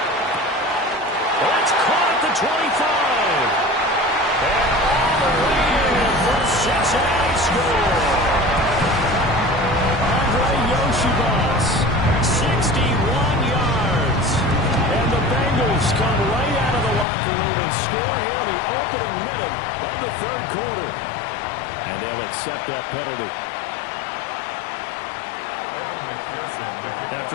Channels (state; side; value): drops out; right; at 17.1 s